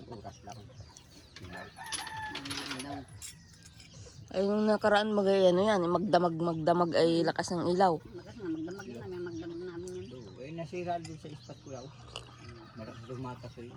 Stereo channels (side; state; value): both; identical; correlation 1.00